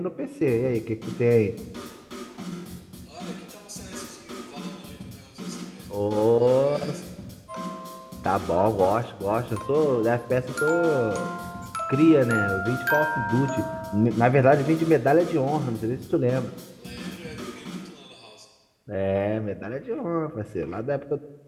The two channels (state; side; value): identical; both; correlation 1.00